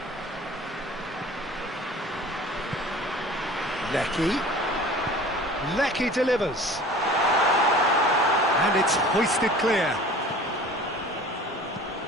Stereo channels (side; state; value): both; normal; correlation 0.43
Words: Lecky delivers. And it's hoisted clear.